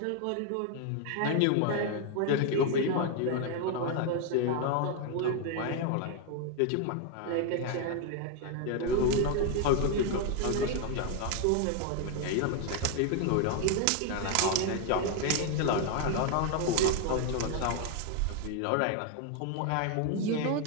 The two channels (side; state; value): both; different; correlation 0.01